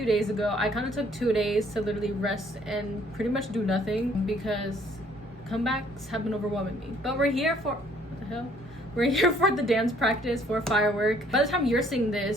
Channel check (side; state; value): both; normal; correlation 0.61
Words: days ago. I kind of took 2 days to literally rest and pretty much do nothing because comebacks have been overwhelming me. But we're here for, what the hell? We're here for the dance practice for Firework. By the time you're seeing